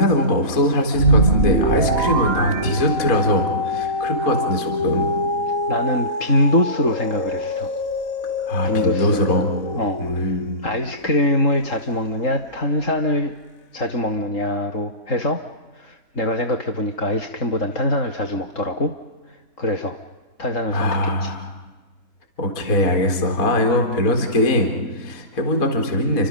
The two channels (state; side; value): late; right; 4.1 ms